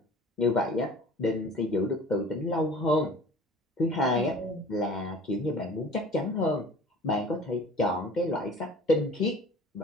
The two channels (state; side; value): normal; both; correlation 0.45